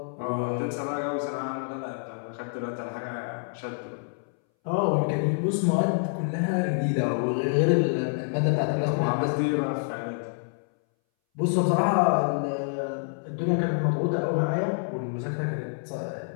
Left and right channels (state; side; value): silent; right; 60 dB below the other